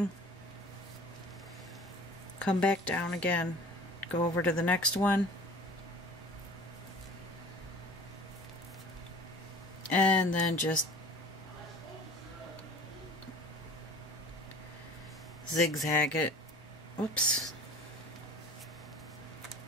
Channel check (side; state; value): both; normal; correlation 0.43